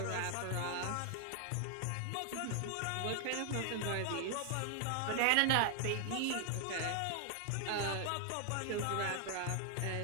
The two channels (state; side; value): different; both; correlation 0.00